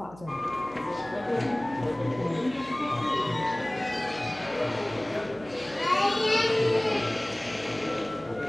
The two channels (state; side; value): noise; right; hum, 20 dB below the sound